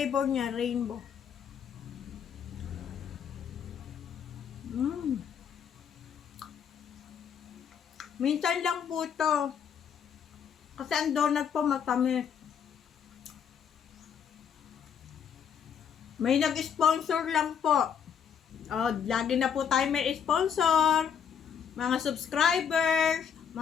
niya, rainbow. Minsan lang po ito. Kasi ang donut po matamis. May nag-sponsor lang po. Lagi na po tayo may sponsor. Mga subscribers,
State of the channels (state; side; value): quieter; right; 7.7 dB